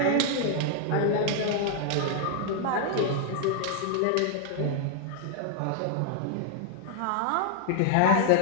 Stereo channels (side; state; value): both; different; correlation -0.01